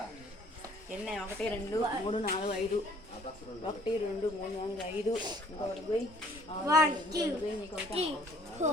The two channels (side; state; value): both; normal; correlation 0.58